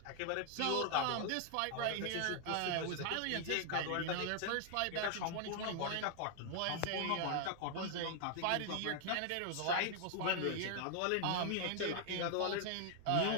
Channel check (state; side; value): different; both; correlation 0.00